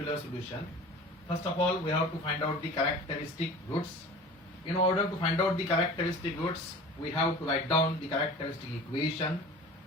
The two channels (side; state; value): both; normal; correlation 0.40